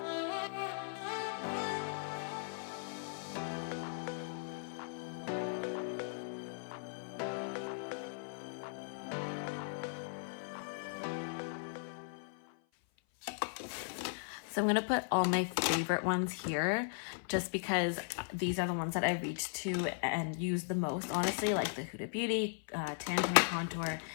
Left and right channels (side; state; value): right; silent; 53 dB below the other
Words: So I'm gonna put all my favorite ones here just because these are the ones that I reach to and use the most, honestly, like the Huda Beauty, Tan Contour,